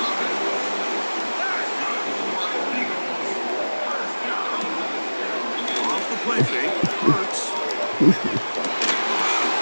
Off the play fake, Hurts.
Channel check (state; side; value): inverted; both; correlation -1.00